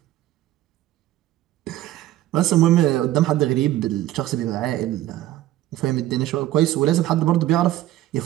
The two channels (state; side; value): quieter; left; 14.4 dB